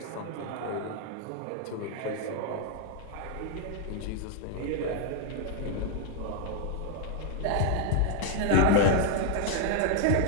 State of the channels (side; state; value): both; different; correlation 0.00